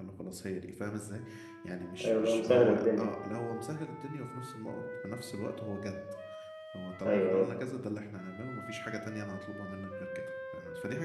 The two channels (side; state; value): both; identical; correlation 1.00